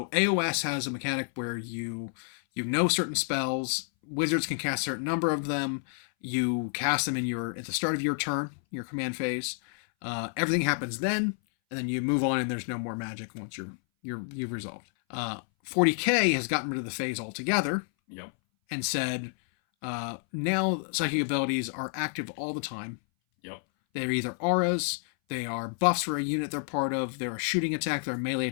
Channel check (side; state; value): right; silent; 58 dB below the other